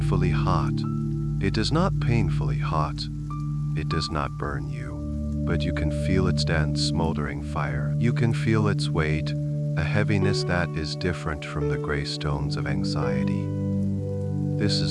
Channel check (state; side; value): identical; both; correlation 1.00